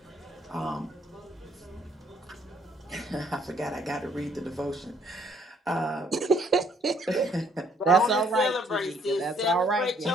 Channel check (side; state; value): both; normal; correlation 0.65